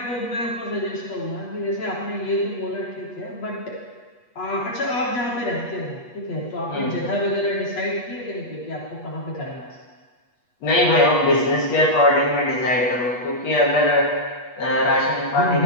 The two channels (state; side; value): late; right; 8.3 ms